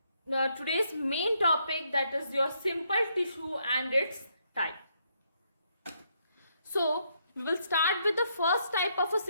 today's main topic, that is your simple tissue and its type. So we will start with the first type of a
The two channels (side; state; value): both; inverted; correlation -0.75